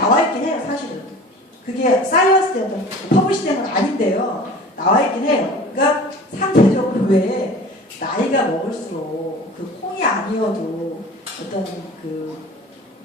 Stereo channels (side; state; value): both; normal; correlation 0.41